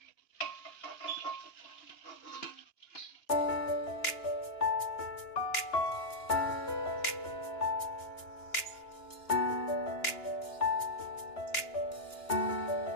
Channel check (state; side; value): late; right; 2.9 ms